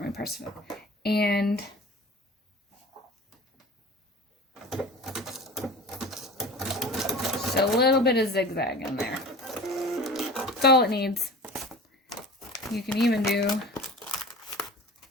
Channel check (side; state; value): both; normal; correlation 0.38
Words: my Percival. And just a little bit of zigzag in there. That's all it needs. You can even do